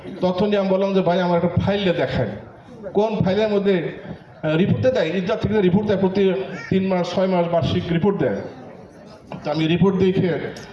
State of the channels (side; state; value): both; identical; correlation 1.00